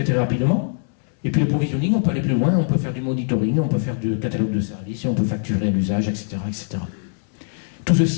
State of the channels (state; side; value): silent; right; 64 dB below the other